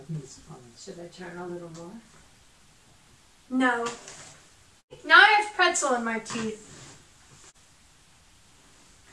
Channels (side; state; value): both; identical; correlation 1.00